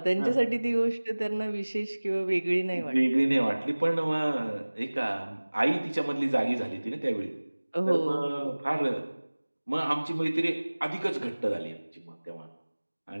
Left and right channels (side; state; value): both; inverted; correlation -1.00